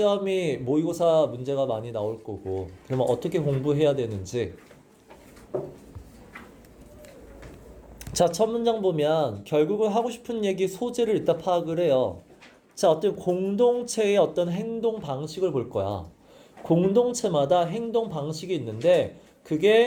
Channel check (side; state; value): both; identical; correlation 1.00